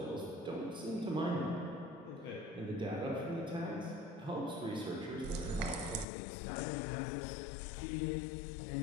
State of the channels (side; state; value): right; drops out; at 6.1 s